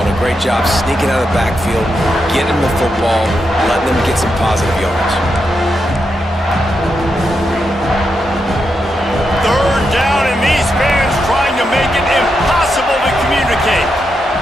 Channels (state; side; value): normal; both; correlation 0.84